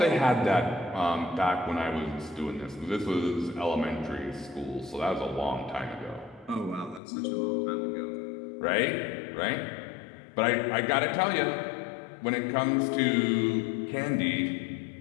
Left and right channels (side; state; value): right; drops out; at 7.0 s